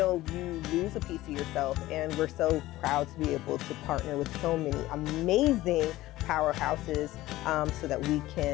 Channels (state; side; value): quieter; right; 16.7 dB